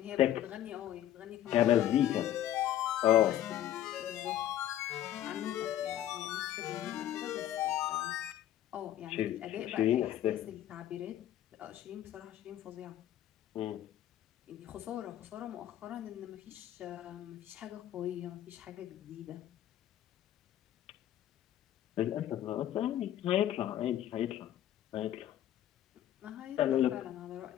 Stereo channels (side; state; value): right; quieter; 12.1 dB